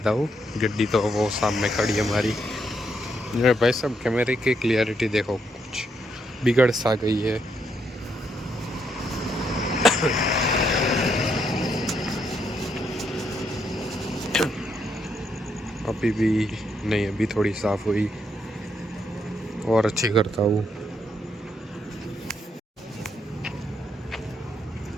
हूँ। गड्डी तो वो सामने खड़ी है हमारी। मेरे भाई साहब कैमरे की क्लियरिटी देखो कुछ बिगड़ सा गई है। अभी भी नहीं, अभी थोड़ी साफ हुई और अच्छी करता हूँ।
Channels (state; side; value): normal; both; correlation 0.77